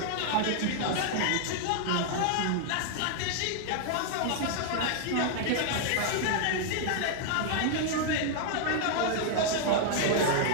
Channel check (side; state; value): both; different; correlation 0.00